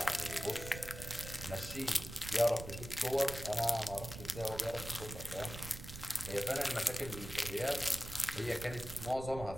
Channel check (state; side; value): noise; right; rumble, 10 dB below the sound